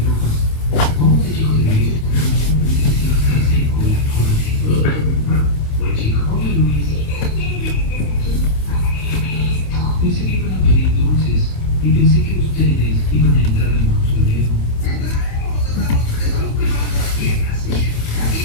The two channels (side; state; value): right; late; 27 ms